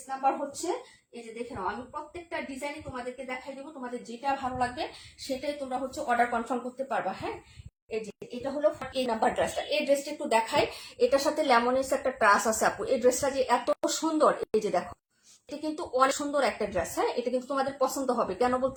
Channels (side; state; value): both; identical; correlation 1.00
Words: নাম্বার হচ্ছে। এই যে দেখে নাও, আমি প্রত্যেকটা ডিজাইনই তোমাদেরকে দেখাই দেবো, তোমাদের যেটা ভালো লাগবে সেটাই তোমরা হচ্ছে অর্ডার কনফার্ম করতে পারবা। হ্যাঁ, এই যে এটা হলো এই নাম্বার ড্রেসটা। এই ড্রেসটা একটু দেখাই, এটার সাথে লেমনেস একটা ট্রাস আছে আপু। এই ড্রেসটা যে এত সুন্দর, এই যে দেখো, এটা কিন্তু অনেক সুন্দর একটা ড্রেস। হ্যাঁ, এটা কিন্তু তোমাদের পছন্দ হবে। কেন